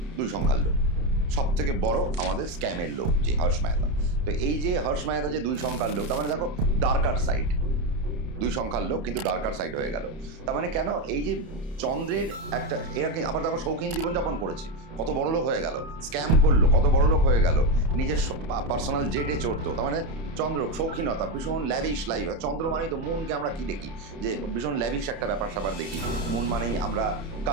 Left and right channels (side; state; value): left; late; 31 ms